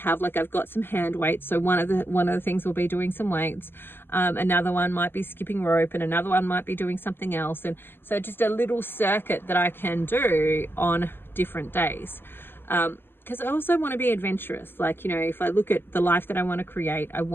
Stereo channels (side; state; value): right; late; 0.10 ms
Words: Like, I've got some hand weights, so one of the things will be doing some weights, another one might be skipping rope, and another one might be doing something else. And so just a little circuit that I can do on different days. Because I also want to be adventurous. Like, if I look at the life that I want to create, I